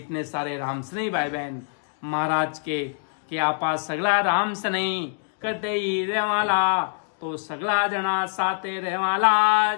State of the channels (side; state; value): right; silent; digital silence